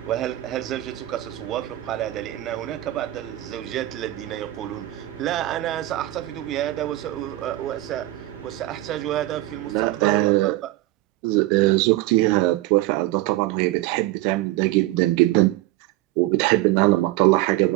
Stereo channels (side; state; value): left; quieter; 16.8 dB